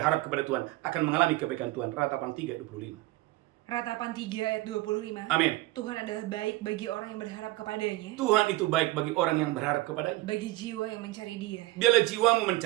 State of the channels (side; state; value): left; quieter; 19.1 dB